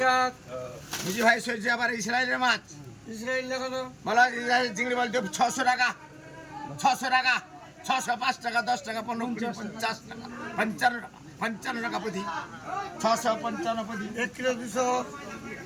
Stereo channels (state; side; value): identical; both; correlation 1.00